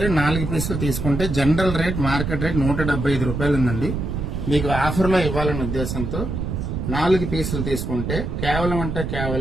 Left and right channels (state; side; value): noise; right; rumble, 3 dB below the sound